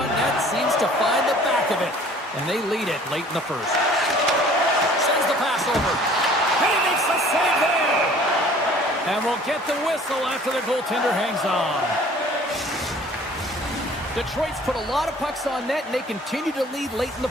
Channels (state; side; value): normal; both; correlation 0.51